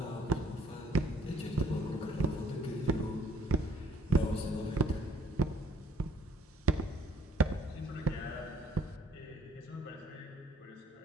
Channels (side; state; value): both; normal; correlation 0.61